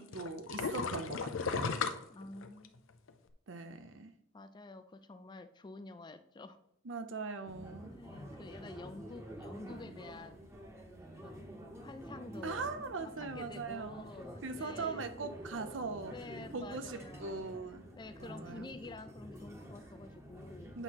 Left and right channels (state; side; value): normal; both; correlation 0.12